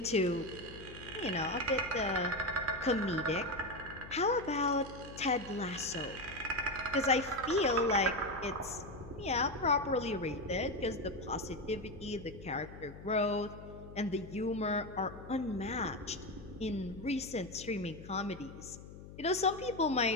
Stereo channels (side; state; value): left; noise; hum, 15 dB below the sound